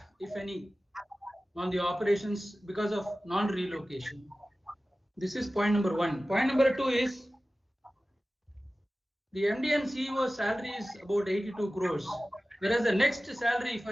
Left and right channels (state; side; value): normal; both; correlation 0.96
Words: if any, on the operations because of non-relocation. This is point number one. Point number two is the MD and CEO salary is about 82 crores, whereas the next salary, if